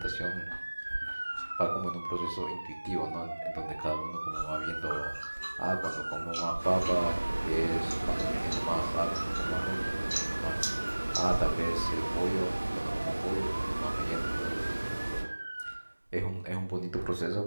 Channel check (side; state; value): both; inverted; correlation -1.00